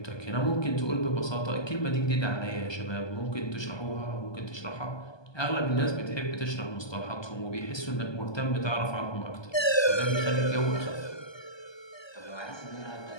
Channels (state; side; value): late; right; 1.2 ms